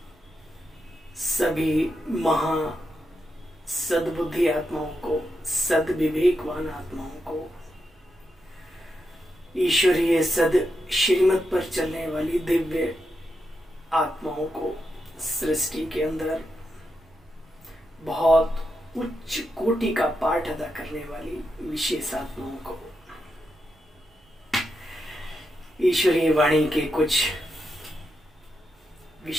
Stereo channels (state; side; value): normal; both; correlation 0.85